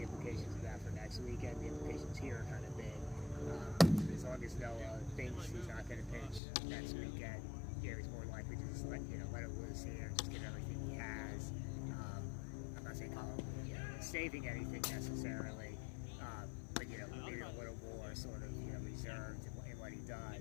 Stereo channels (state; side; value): drops out; right; at 6.4 s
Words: implications of that for next weekend, the implications here are kind of big. As long as Noah thinks he's not going to pitch next weekend, he's more likely to just let it loose here, just give everything he has. I'm not saying Colin saving anything necessarily. But maybe a little more sort of reserved in what he